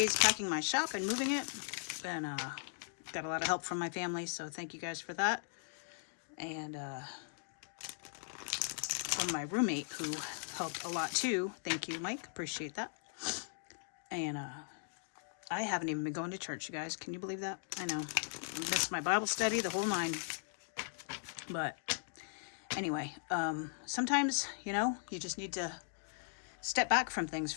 packing my shop and moving it, and got a lot of help from my family, so thank you guys for that. And from my roommate, who helped a lot too. Thank you, Mike. Appreciate that. And I haven't even been going to church, you guys. Can you believe that? I know. I missed my Bible study, the whole 9. But anyway, sometimes, you just need to step back from things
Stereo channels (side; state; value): right; silent; digital silence